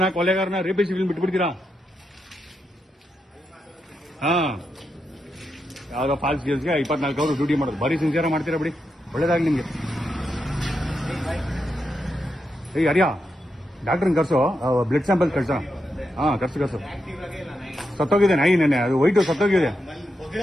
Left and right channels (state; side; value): normal; both; correlation 0.85